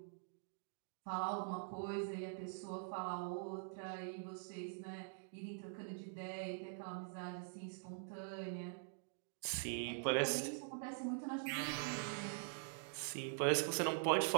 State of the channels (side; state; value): left; silent; digital silence